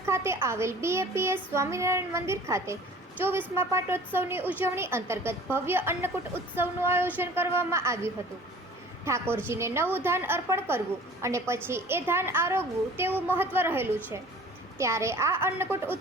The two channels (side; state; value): both; normal; correlation 0.46